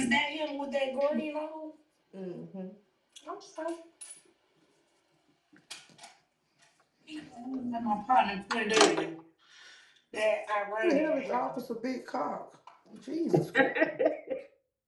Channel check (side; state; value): both; identical; correlation 1.00